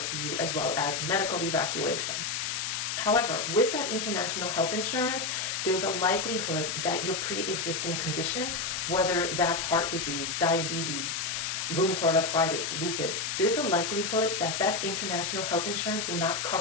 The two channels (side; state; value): left; noise; hiss, 2 dB below the sound